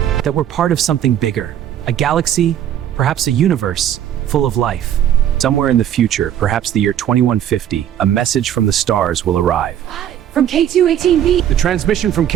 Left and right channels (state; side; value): quieter; left; 10.6 dB